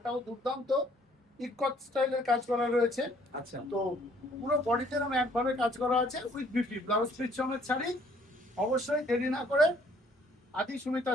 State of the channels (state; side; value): normal; both; correlation 0.61